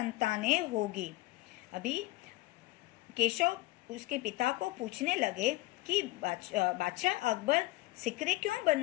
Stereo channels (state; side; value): quieter; right; 19.3 dB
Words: होगी। अभी केशव उसके पिता को पूछने लगे कि बादशाह अकबर सिकरी क्यों